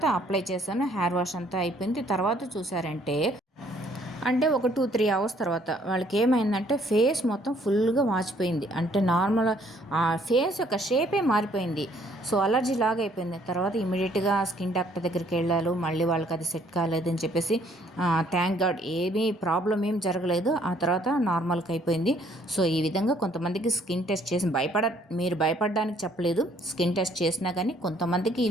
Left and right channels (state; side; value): normal; both; correlation 0.63